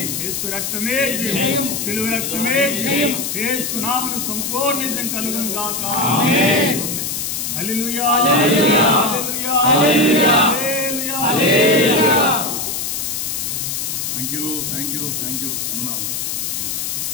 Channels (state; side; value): noise; left; hiss, 3 dB below the sound